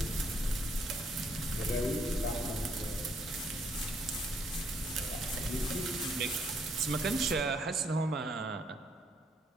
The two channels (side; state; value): both; normal; correlation 0.70